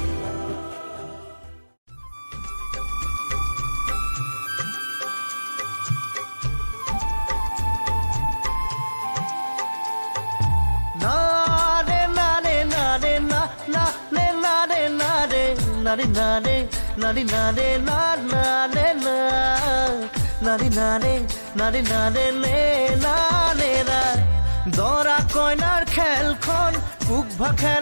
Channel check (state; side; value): inverted; both; correlation -1.00